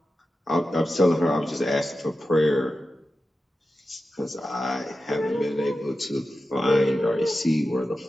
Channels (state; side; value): normal; both; correlation 0.92